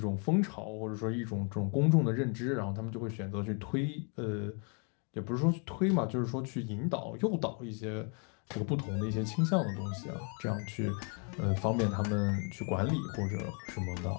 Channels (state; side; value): quieter; right; 37.9 dB